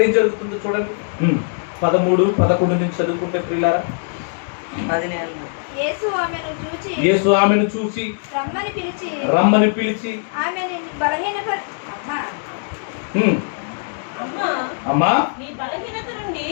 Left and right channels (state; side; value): silent; right; digital silence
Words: ఏం జరుగుతుందో చూడండి. 13-11 నుంచి చదువుకుంటే ప్రియులారా, యేసు ఆమెను చూసి రమ్మని పిలిచి అమ్మా,